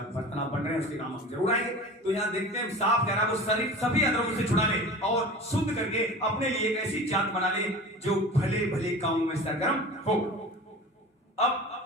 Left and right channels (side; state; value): both; normal; correlation 0.36